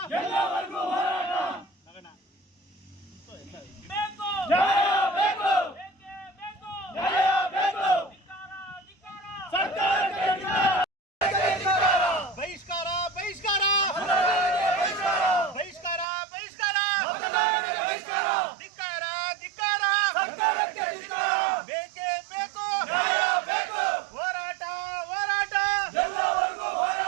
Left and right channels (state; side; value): drops out; left; at 16.1 s